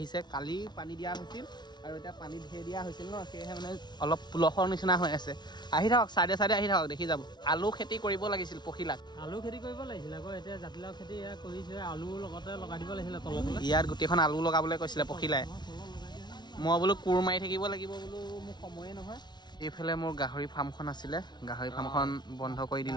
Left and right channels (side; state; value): right; late; 0.20 ms